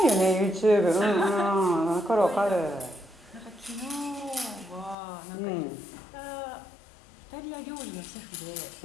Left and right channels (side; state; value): right; drops out; at 5.0 s